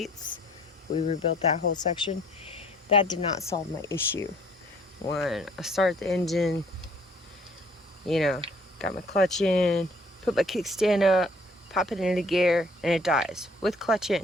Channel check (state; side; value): normal; both; correlation 0.59